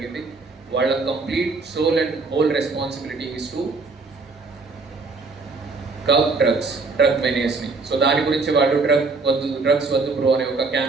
వాళ్ళ complete sole and whole responsibility is to curb drug మెనేస్ని. సో దాని గురించి వాళ్ళు డ్రగ్స్ వద్దు బ్రో అనే ఒక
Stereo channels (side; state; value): left; quieter; 4.0 dB